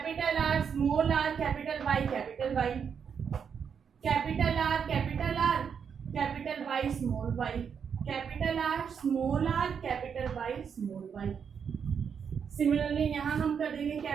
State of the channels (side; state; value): left; quieter; 7.0 dB